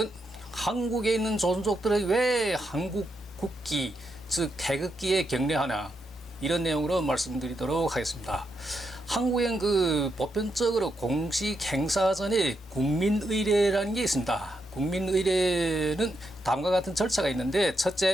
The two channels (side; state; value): both; normal; correlation 0.82